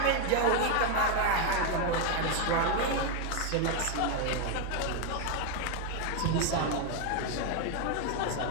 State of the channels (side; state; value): both; different; correlation 0.01